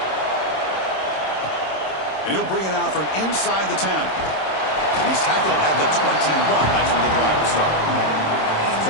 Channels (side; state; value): right; late; 26 ms